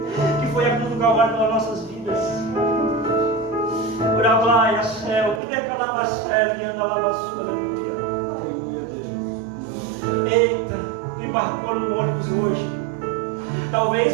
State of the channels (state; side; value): drops out; left; at 5.4 s